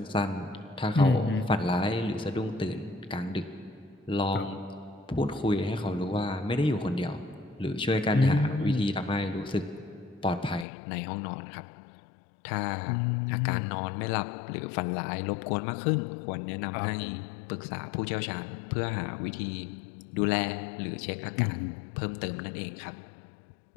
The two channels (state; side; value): drops out; right; at 10.7 s